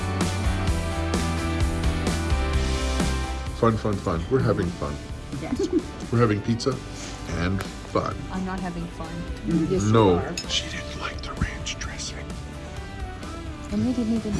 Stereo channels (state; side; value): identical; both; correlation 1.00